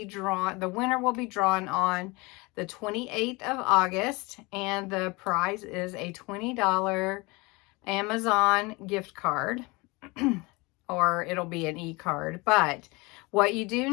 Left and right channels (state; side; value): quieter; right; 25.2 dB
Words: drawn, the winner will be drawn on the 28th of August, and the prize is a $20 Amazon gift card, or it'll be an e-card. But what you do